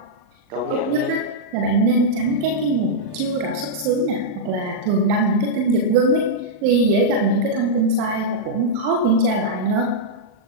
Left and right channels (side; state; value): left; late; 39 ms